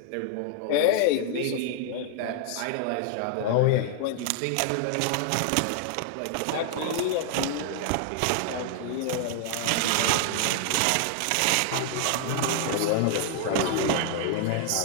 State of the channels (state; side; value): different; both; correlation 0.00